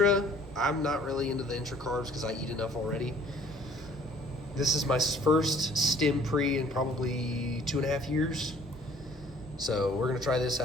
I'm not really into the intra carbs because I eat enough already. This is my first stim pre in probably 2.5 years. So we're gonna try this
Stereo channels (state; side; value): normal; both; correlation 0.56